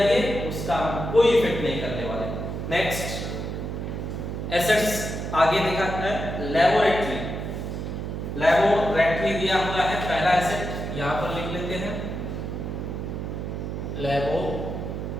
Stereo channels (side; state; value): right; noise; hum, 5 dB below the sound